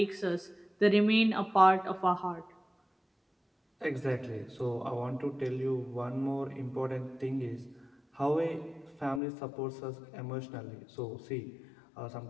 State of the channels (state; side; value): drops out; right; at 9.2 s